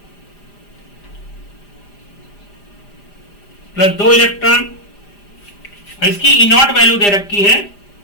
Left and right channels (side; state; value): right; late; 4.9 ms